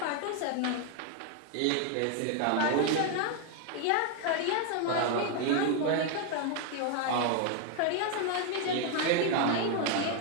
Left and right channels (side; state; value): both; different; correlation 0.00